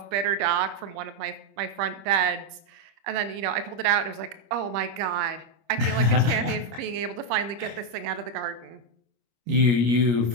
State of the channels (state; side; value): late; left; 25 ms